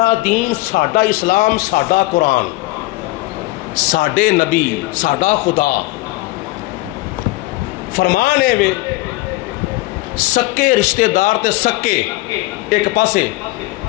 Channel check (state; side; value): quieter; right; 20.2 dB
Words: دین ساڈا اسلام ساڈا قرآن ساڈے نبی ساڈا خدا فرمان ہے وے سکے رشتہ دار تے سکے ایک پاسے